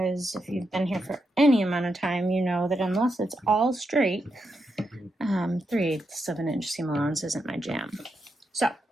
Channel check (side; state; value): both; normal; correlation 0.84